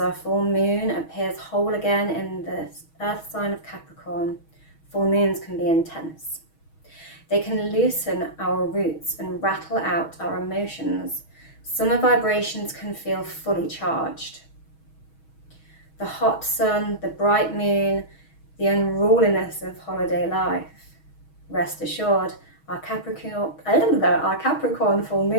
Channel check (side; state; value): right; late; 6.3 ms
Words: full moon appears whole again in the earth sign of Capricorn. Full moons can be intense. They can loosen our roots and rattle out our emotions. Summer vibrations can feel fully charged. The hot sun, the bright moon, the unruliness of holiday life. Rest assured, our Capricorn full